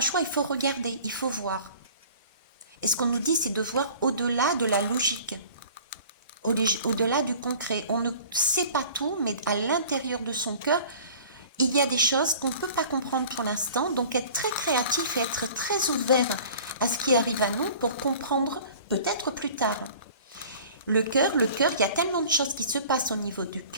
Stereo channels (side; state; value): both; inverted; correlation -0.46